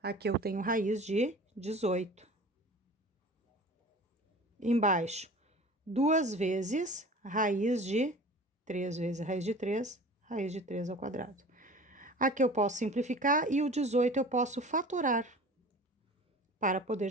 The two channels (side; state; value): both; normal; correlation 0.40